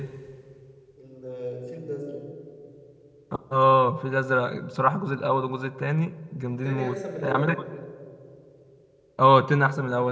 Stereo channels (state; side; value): identical; both; correlation 1.00